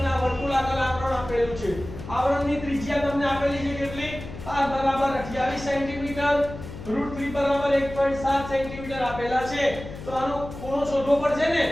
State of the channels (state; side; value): noise; left; hum, 12 dB below the sound